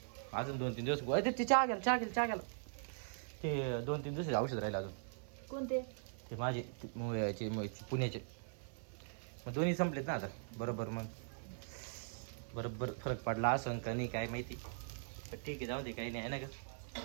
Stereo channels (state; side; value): silent; left; 51 dB below the other